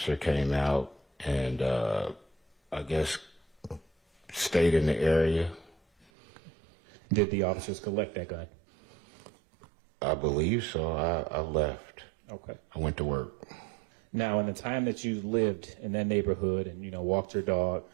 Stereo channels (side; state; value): left; drops out; at 6.1 s